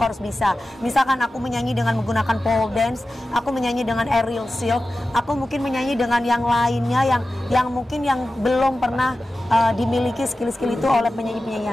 harus bisa. Misalkan aku menyanyi dengan menggunakan pole dance, aku menyanyi dengan aerial silk, aku mungkin menyanyi dengan yang lainnya yang mungkin yang belum pernah dimiliki skill-skill itu oleh penyanyi-penyanyi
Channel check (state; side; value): normal; both; correlation 0.94